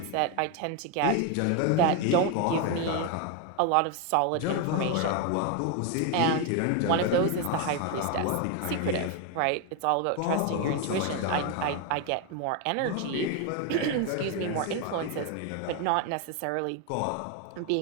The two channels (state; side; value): different; both; correlation 0.01